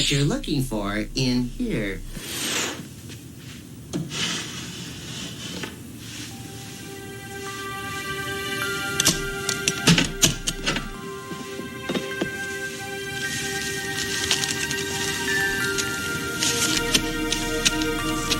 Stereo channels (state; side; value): identical; both; correlation 1.00